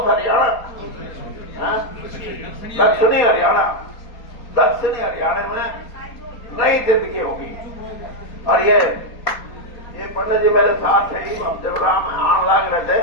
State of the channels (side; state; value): right; late; 4.2 ms